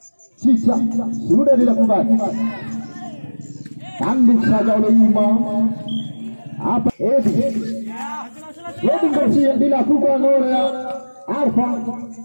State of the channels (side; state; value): both; inverted; correlation -1.00